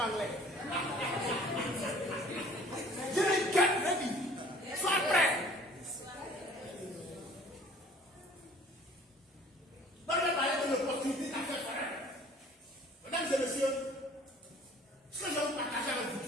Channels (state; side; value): normal; both; correlation 0.51